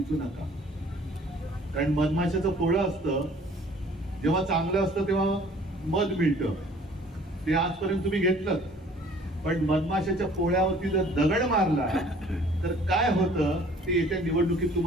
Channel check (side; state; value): both; normal; correlation 0.53